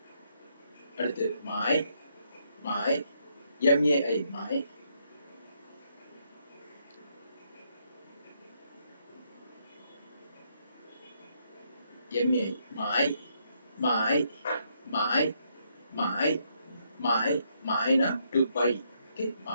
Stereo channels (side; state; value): both; inverted; correlation -0.75